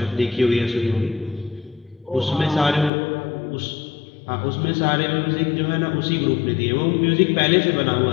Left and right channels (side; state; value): right; drops out; at 2.9 s